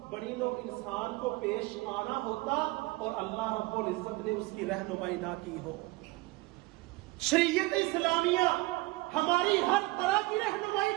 بنی نوع انسان کو پیش آنا ہوتا اور اللہ رب العزت نے اس کی رہنمائی نہ کی ہو۔ شریعت اسلامیہ ہماری ہر طرح کی رہنمائی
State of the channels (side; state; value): left; quieter; 21.6 dB